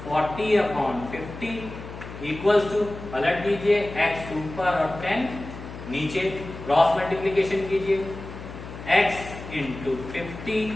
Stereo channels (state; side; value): noise; left; hum, 12 dB below the sound